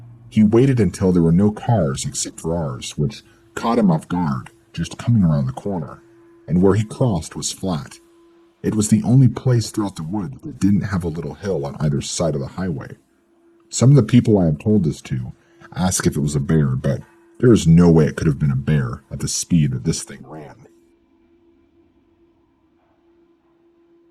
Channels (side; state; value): both; identical; correlation 1.00